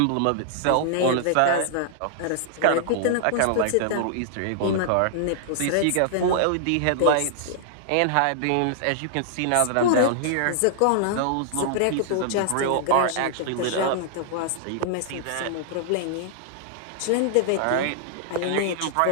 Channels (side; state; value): both; different; correlation -0.01